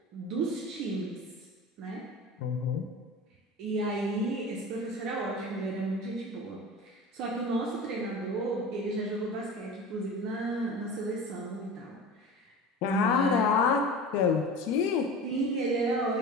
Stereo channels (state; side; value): normal; both; correlation 0.34